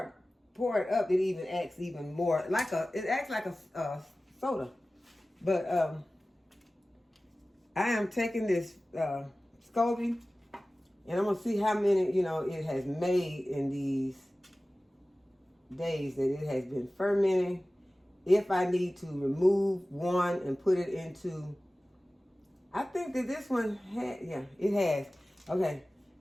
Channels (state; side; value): normal; both; correlation 0.97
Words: it up, it even acts even more it acts like a soda. But I am taking this SCOBY, and I'm gonna see how many it has made in these days that it has been fermenting. If I need to remove one and put it into, I think that this one it has. Okay,